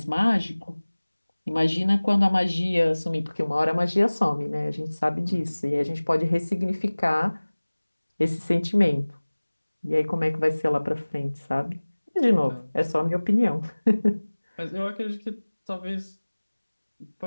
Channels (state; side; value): inverted; both; correlation -1.00